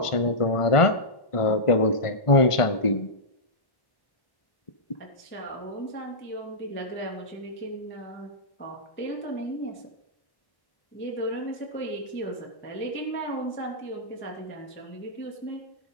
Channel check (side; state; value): right; late; 1.5 ms